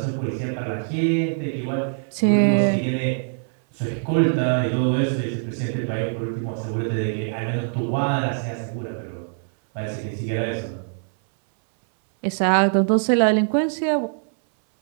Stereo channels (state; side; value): silent; left; 63 dB below the other